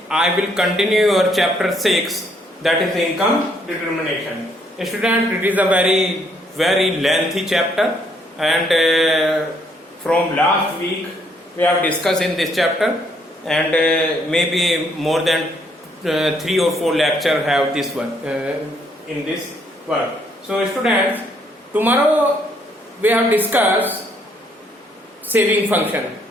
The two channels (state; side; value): normal; both; correlation 0.70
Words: I will continue your chapter 6, that is income determination. Student, it is a very lengthy chapter, and from last week we have discussed in this chapter, and maybe more than 3 or 4 lectures have this one in this work. So students, tomorrow we have discussed saving function.